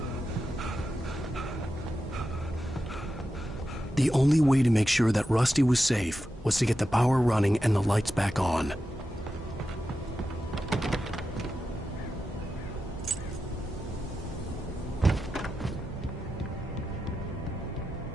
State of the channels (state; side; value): normal; both; correlation 0.90